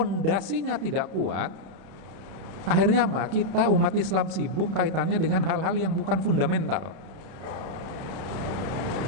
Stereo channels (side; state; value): left; late; 31 ms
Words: tidak kuat, akhirnya apa? Kita umat Islam sibuk kaitannya dengan hal-hal yang bukan fundamental.